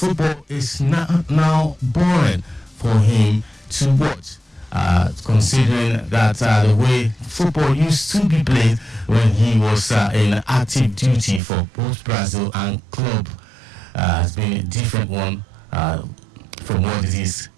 is now boring for him to watch, considering that the way football used to be played when he was in active duty for both Brazil and club has been a different one from what it is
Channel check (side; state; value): left; drops out; at 11.4 s